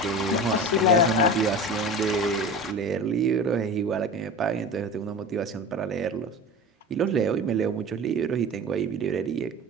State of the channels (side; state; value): both; normal; correlation 0.33